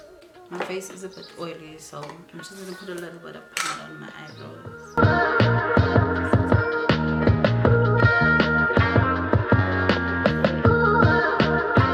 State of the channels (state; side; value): identical; both; correlation 1.00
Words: My face is a bit oily, so I'm just gonna put a little bit of powder on my eyebrows.